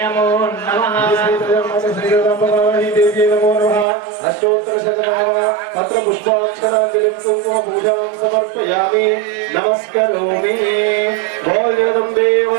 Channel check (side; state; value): left; drops out; at 3.9 s